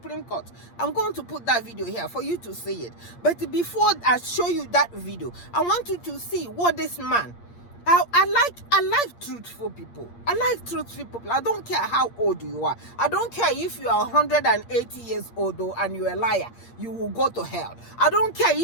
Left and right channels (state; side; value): late; right; 8.6 ms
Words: Court. I'm going to put that video here for you to see it. But before I show you that video, I want you to see what this man. I like truthful people. I like truthful people. I don't care how old you are. I don't care if you are 180 years old and you're a liar. You will go to hell. I don't care